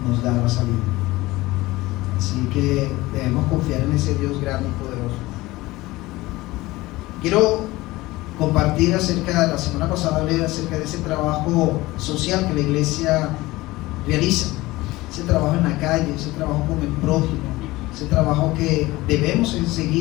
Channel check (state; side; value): quieter; right; 19.4 dB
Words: nos da la salida. Así que debemos confiar en ese Dios grande y poderoso. Quiero compartir la semana pasada hablé acerca de ese trabajo social que la iglesia realiza, ese trabajo en la calle, ese trabajo con el prójimo, ese trabajo que debemos